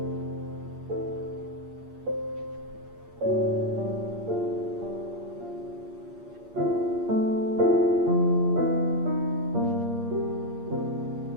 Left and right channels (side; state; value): left; late; 8.5 ms